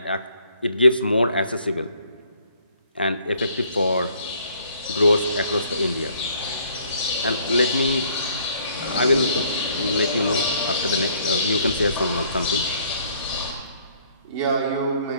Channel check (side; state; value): both; inverted; correlation -0.63